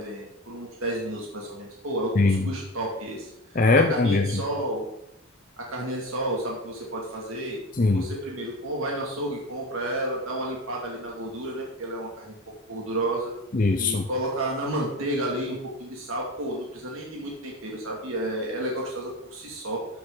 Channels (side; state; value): both; normal; correlation 0.30